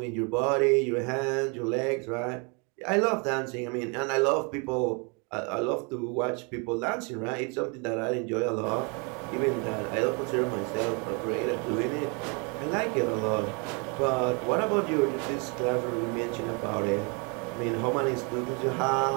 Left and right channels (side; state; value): left; quieter; 33.7 dB